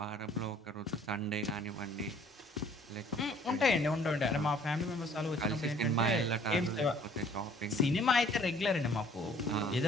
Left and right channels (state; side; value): normal; both; correlation 0.56